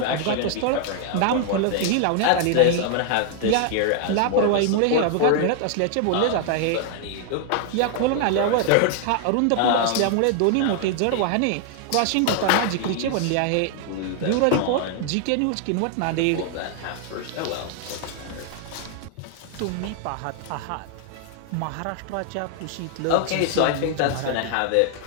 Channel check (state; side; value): different; both; correlation 0.00